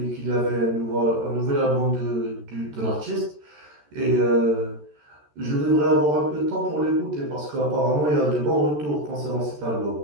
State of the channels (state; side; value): late; left; 13 ms